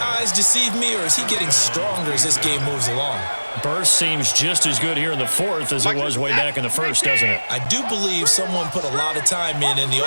eyes deceive me, or is he getting stronger as this game moves along? Burst seems just as good here in the 4th as it was way back in the 1st, doesn't it? I do believe someone put a lot of time in the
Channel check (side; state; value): both; inverted; correlation -1.00